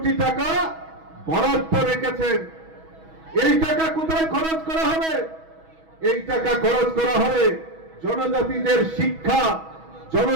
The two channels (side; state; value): left; late; 6.2 ms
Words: টাকা বরাদ্দ রেখেছেন। এই টাকা কোথায় খরচ করা হবে? এই টাকা খরচ করা হবে জনজাতিদের শিক্ষা,